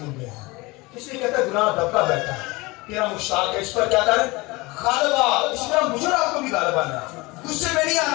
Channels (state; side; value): quieter; right; 23.5 dB